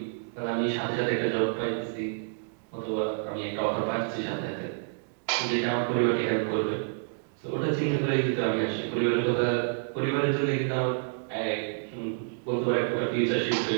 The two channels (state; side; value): silent; left; digital silence